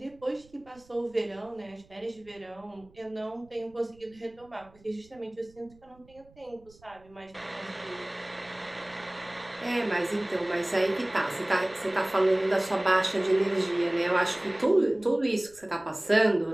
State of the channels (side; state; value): right; noise; rumble, 27 dB below the sound